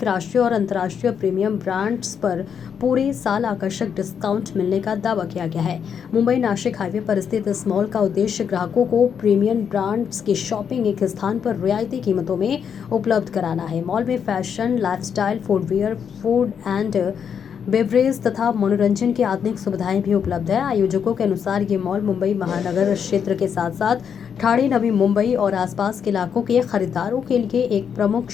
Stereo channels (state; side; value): quieter; right; 7.4 dB